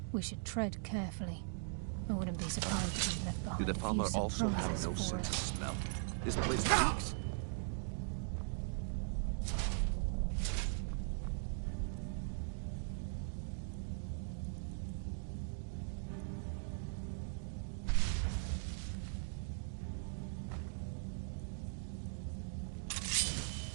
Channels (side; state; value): left; silent; digital silence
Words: We should tread carefully. I wouldn't be surprised if we've left behind Do the a few farmer also have surprises no for sense of us. smell? This place stinks.